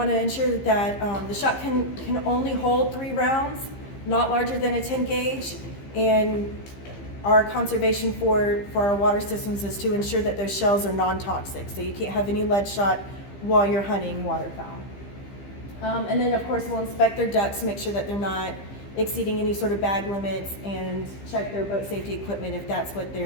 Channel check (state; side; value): late; right; 15 ms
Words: to ensure that the shot can only hold 3 rounds, not larger than a 10 gauge, and our conservation for our water systems is to ensure that those shells are non-toxic. So you can't have any lead shot while you're hunting waterfowl. And then of course we'll inspect their ducks to make sure that they're not exceeding any sort of bag limits, and check their boat safety equipment if that's what